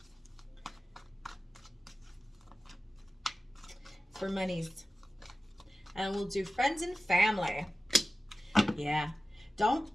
For monies. And we'll do friends and family. Yeah. Don't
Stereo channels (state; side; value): normal; both; correlation 0.94